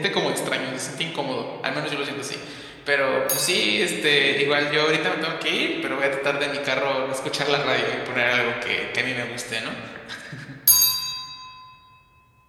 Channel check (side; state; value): both; identical; correlation 1.00